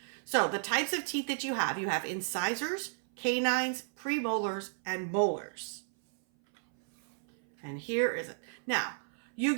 So the types of teeth that you have incisors, canines, premolars, and molars. And here is it. Now, you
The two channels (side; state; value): left; silent; 56 dB below the other